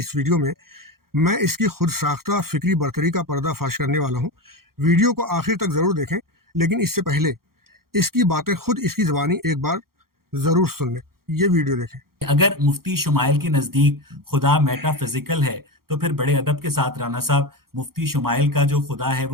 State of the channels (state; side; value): late; left; 0.93 ms